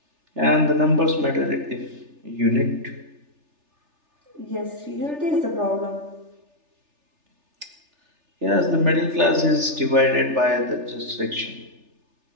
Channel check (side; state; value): left; late; 3.3 ms